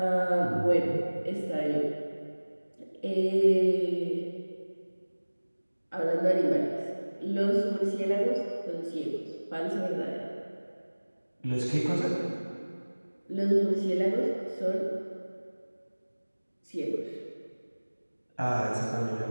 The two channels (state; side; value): inverted; both; correlation -1.00